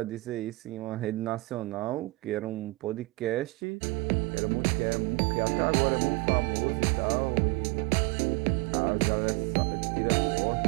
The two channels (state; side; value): drops out; left; at 3.5 s